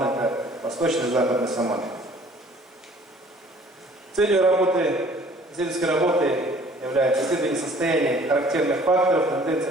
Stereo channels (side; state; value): both; normal; correlation 0.54